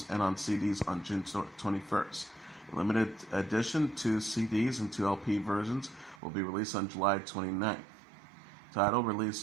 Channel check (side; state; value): left; drops out; at 6.2 s